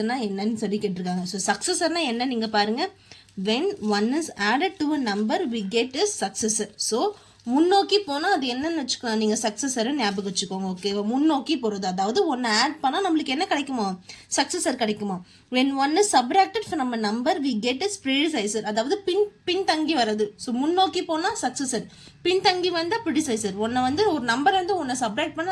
என்னன்னு சொல்லி கேட்டிருக்காங்க. ஸோ சக்ஸஸர்னா என்ன நீங்கள் பாருங்கள். when 1 is added to a number we get a successor. so முன்னோக்கி போனால் அது என்னன்னு வச்சுக்கோங்க, நீங்கள் சக்ஸஸரை ஞாபகம் வச்சுக்கோங்க. ஓகேவா, முன்னோக்கி போகிறது, அதாவது ஒன்று ஆட் பண்ணால் நம்மளுக்கு என்ன கிடைக்குமோ, சக்ஸஸர் கிடைக்குமா. when 1 is subtracted from a number we get a predecessor, அதாவது பின்தங்கி வர்றது. ஸோ முன்னோக்கி போனால் சக்ஸஸர், பின்தங்கி வந்தால் ப்ரிடிசைசர். ஒன்றை வந்து ஒரு நம்பர் வந்து ஒன்றை சப்ராக்ட்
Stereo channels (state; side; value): identical; both; correlation 1.00